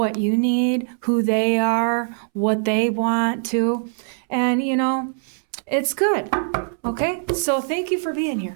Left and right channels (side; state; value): left; silent; 64 dB below the other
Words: you need, who they are, what they want to, and you know, it's good. Okay, so thank you for being